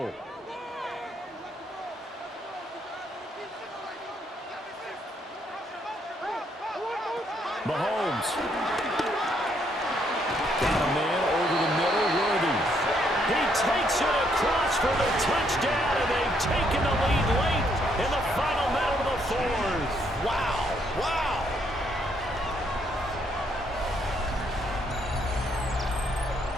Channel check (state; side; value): normal; both; correlation 0.72